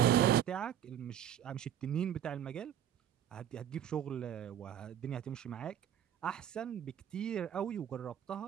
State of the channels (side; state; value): left; quieter; 10.2 dB